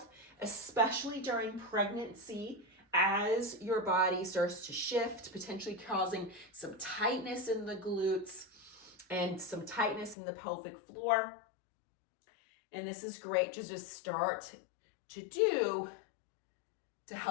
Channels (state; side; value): drops out; right; at 10.2 s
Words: especially during pregnancy as your body starts to shift, potentially causing some tightness in the glutes and some tightness in the pelvic floor. And this is great to just start to do to